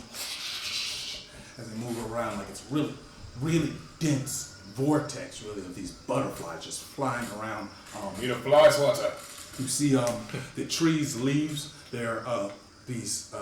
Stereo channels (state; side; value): identical; both; correlation 1.00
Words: as they move around. Like it's really, really dense vortex, really, of these butterflies just flying around. Need a fly swatter. You see the trees' leaves. They're these